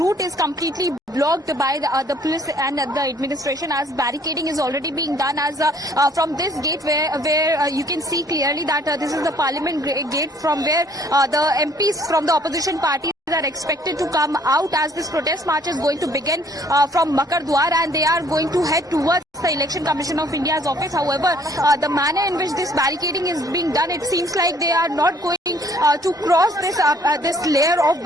is completely blocked by the police and the administration, as barricading is already being done as from this gate where you can see clearly that this is the Parliament gate from where the MPs from the opposition party are expected to come out as this protest march is going to begin from Makar Dwar, and they are going to head towards the Election Commission of India's office. However, the manner in which this barricading is being done, it seems like they are not going to cross this layer of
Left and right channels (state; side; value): normal; both; correlation 0.60